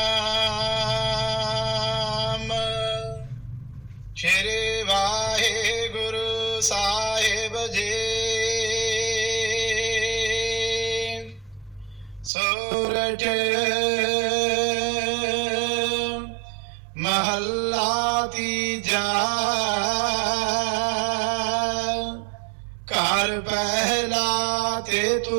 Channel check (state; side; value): drops out; left; at 12.3 s